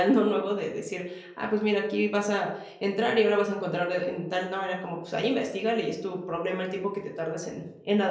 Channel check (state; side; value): identical; both; correlation 1.00